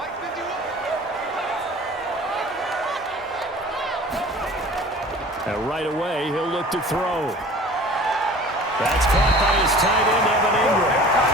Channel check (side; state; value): both; normal; correlation 0.44